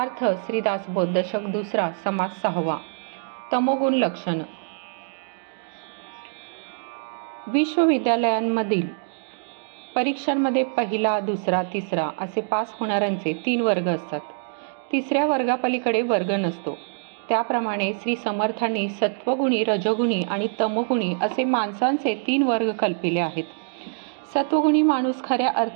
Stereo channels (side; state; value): left; silent; digital silence